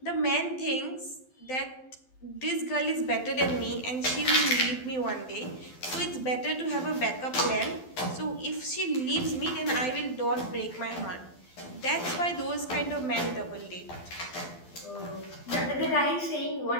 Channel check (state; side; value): late; right; 12 ms